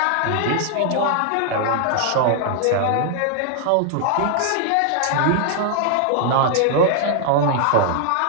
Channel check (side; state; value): both; different; correlation 0.00